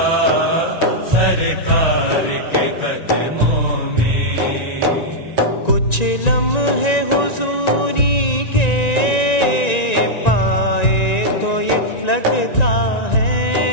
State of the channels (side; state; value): right; late; 1.9 ms